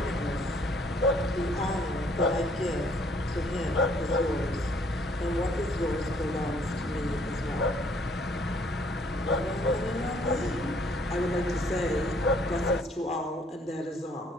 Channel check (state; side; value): normal; both; correlation 0.63